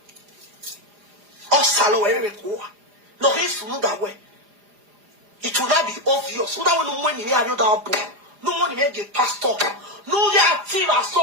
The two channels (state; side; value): late; left; 4.9 ms